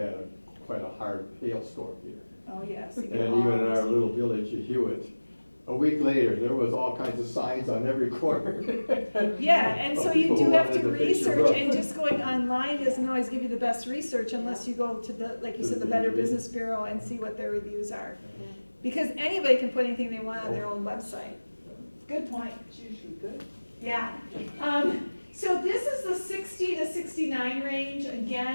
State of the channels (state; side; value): inverted; both; correlation -1.00